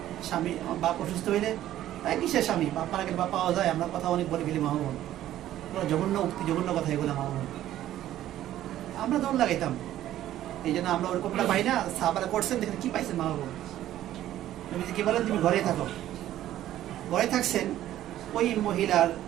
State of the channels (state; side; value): quieter; left; 13.0 dB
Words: স্বামী বাপ অসুস্থ হইলে কিসের স্বামী, বাপ মারা গেলে বাপ পাওয়া যায়। আমরা কথা অনেক বলে ফেলি মা বোন, জঘন্য উক্তি, জঘন্য কথা এগুলো মা বোন। আমরা দৌড় লাগাইতাম। এই জন্য আমরা ওরকমটা পাই না। সাহাবারা করছেন, দেখেন কি পাইছেন মা বোন। নবীজি কি বলেন, তুমি ঘরে থাকো। ঘরে থাকছেন, ওই মহিলার